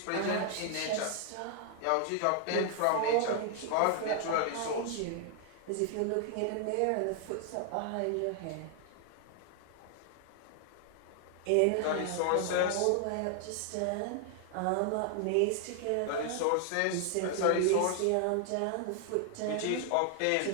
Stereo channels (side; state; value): both; different; correlation 0.00